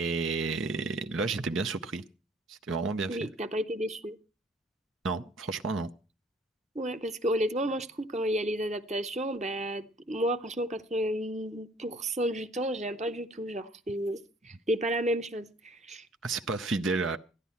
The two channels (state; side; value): normal; both; correlation 0.56